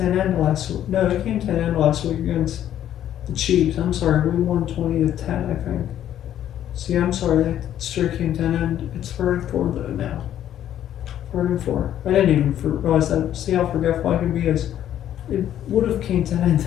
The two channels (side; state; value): right; quieter; 11.2 dB